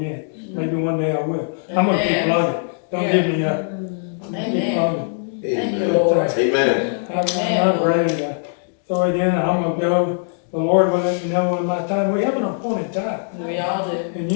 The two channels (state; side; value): silent; right; digital silence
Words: Maybe one day I will. I'm going to keep plugging. Don't give me up. Keep plugging. Thank you, Amen. Lord. Amen. I'm not ready to throw it in. I'm going to go. The Lord will let me know when my time. We have an appointed time. We all do. And